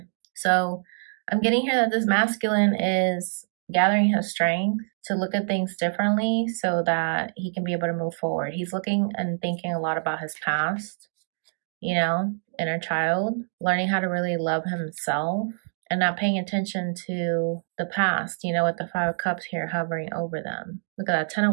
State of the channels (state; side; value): silent; left; digital silence